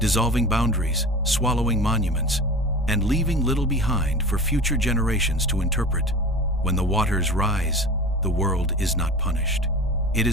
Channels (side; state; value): both; normal; correlation 0.34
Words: boundaries, swallowing monuments, and leaving little behind for future generations to interpret. When the waters rise, the world is not punished. It